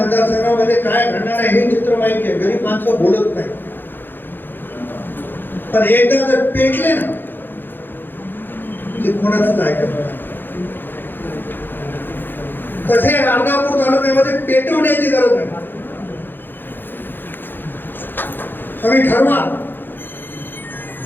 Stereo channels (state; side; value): late; right; 0.096 ms